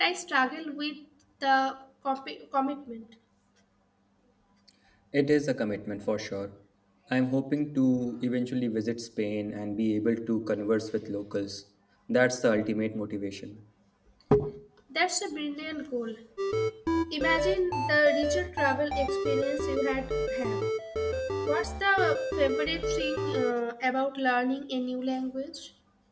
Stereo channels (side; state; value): both; identical; correlation 1.00